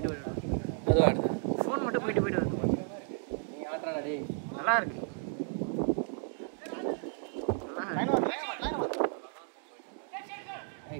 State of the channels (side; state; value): left; silent; 56 dB below the other